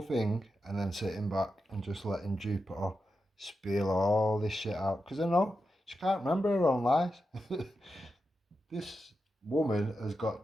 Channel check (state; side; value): normal; both; correlation 0.89